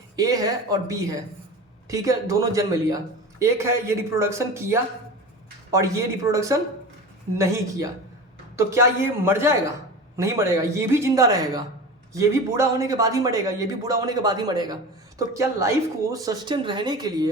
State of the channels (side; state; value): both; normal; correlation 0.32